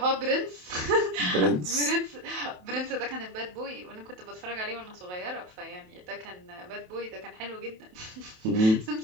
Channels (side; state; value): left; late; 27 ms